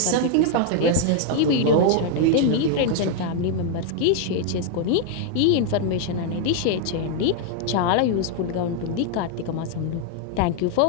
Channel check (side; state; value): both; different; correlation 0.00